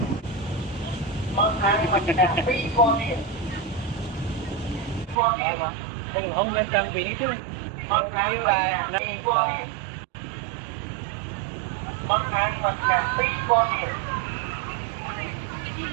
Bác ăn mà cả phi con điện. Con điện mà. Đừng không nên trang bị chứ. Bác ăn mà cả phi con điện. Bác ăn mà cả phi con điện.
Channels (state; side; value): drops out; left; at 5.2 s